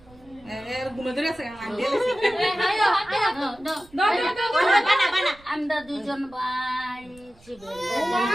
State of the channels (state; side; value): noise; right; rumble, 26 dB below the sound